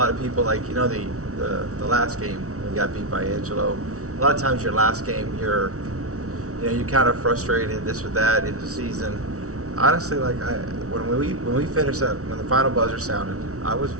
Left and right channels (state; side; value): late; left; 0.64 ms